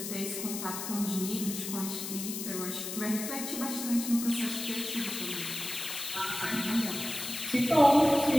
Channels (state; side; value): noise; left; hiss, 6 dB below the sound